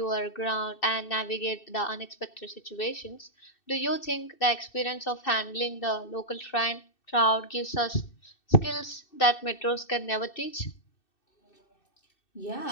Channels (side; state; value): right; late; 2.6 ms